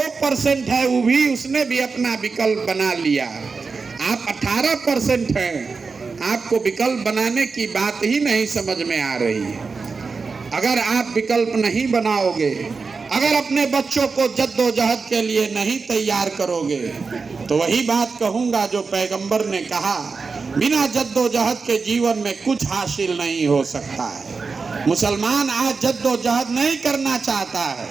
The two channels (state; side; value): quieter; left; 4.6 dB